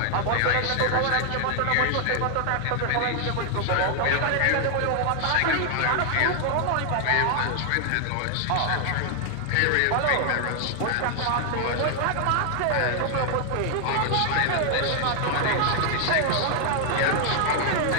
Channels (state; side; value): different; both; correlation 0.00